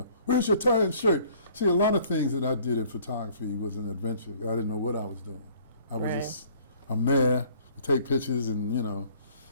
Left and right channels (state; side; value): inverted; both; correlation -0.56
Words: "Where's your tie and shirt?" See, a lot of things that I did in photography was an adventure. I didn't know what I was doing. I was I'm there to take pictures, and